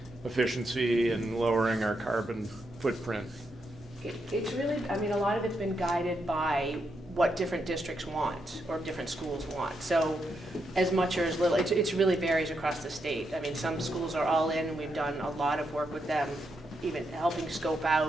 efficiency and lowering our carbon footprint. It's really, a lot of it's been guided by what different districts want or different schools want. So as much or as little, it really varies across the state. Some schools are all in, and we've done a lot of work with them, even helping scope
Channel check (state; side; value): normal; both; correlation 0.82